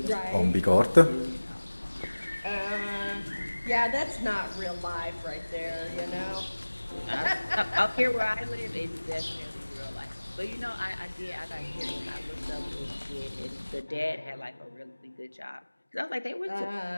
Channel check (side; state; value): both; inverted; correlation -1.00